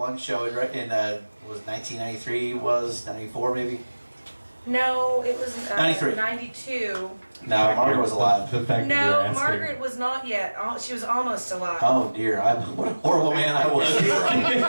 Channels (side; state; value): both; inverted; correlation -1.00